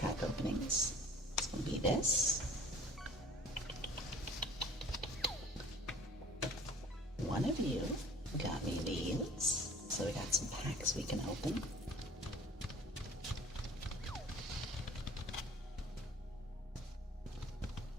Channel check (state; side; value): normal; both; correlation 0.49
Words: openings, it's going to be this. One of you got me these, so we got some packs we can open.